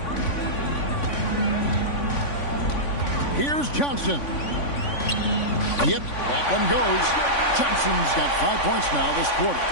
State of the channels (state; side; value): late; right; 3.5 ms